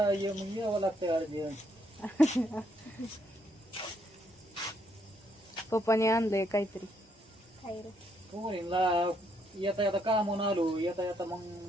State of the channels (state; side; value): normal; both; correlation 0.73